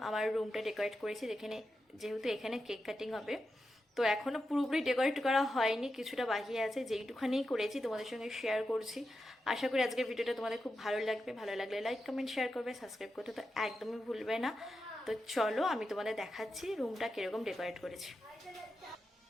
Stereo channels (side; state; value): both; normal; correlation 0.89